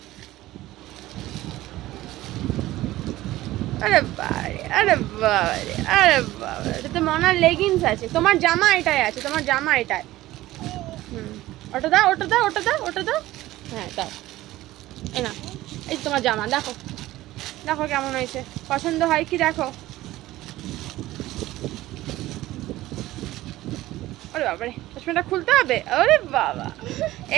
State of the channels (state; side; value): quieter; left; 16.4 dB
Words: আরে বাবারে, আরে বাবারে, আরে বাবা, এটাতে মনার লেগিংস আছে। তোমার জামা এটাই আছে, তোমার জামা এটাই। ওটা দাও, ওটা দাও, ওটা দাও, ওটা দাও। হ্যাঁ দাও। এই না, এই তোমার জামা দেখো, দেখো কেমন হয়েছে, পছন্দ হয় কি দেখো। ওরে বাবারে, চশমাটা খুলতে হবে? ওরে বাবা,